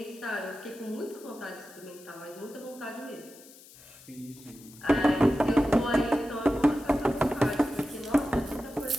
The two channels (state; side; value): noise; left; hiss, 21 dB below the sound